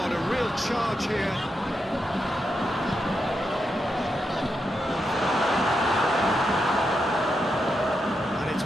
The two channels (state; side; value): normal; both; correlation 0.85